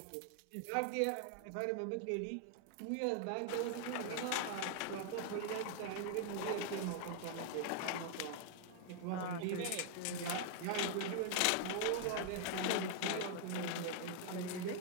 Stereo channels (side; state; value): both; different; correlation 0.00